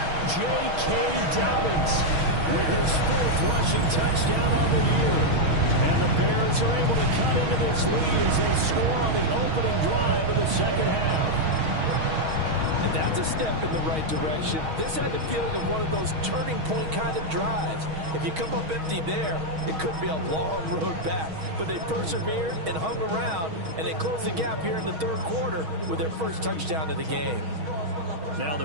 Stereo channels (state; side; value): late; left; 6.3 ms